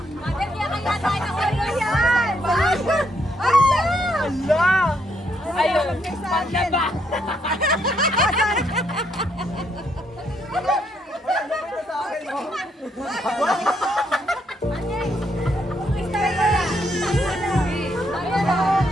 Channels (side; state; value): both; normal; correlation 0.74